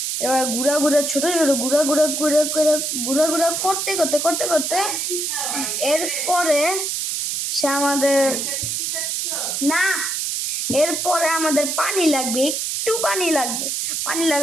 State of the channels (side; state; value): right; noise; hiss, 1 dB below the sound